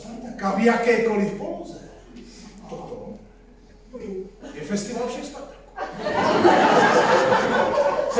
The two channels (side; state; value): both; identical; correlation 1.00